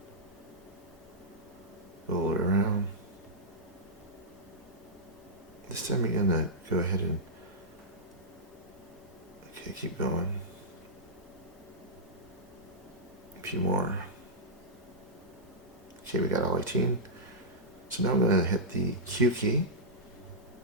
Roll it around. This time you're gonna go ahead and, okay, keep going. A few more. Okay, we got all 18. So now I'm gonna hit the Q key.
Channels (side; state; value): both; normal; correlation -0.12